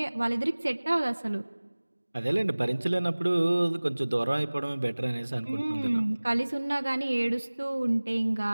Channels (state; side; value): inverted; both; correlation -1.00